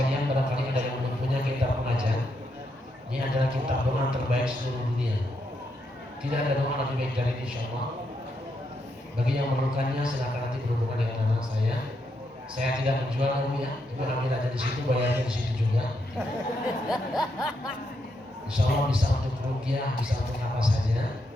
barangkali ada yang belum punya kitab pengajar. Ini adalah kitab doa terbaik seluruh dunia. Tidak ada doa lebih baik dari ini, insyaallah. Bagi yang memerlukannya silakan nanti berhubungan dengan anak saya. Saya tidak menjual, Ibu ya. Ibu ambil aja di situ, bayarnya di situ juga. Insya Allah bisa untuk ruqyah, bisa untuk apa saja.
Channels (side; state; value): both; normal; correlation 0.80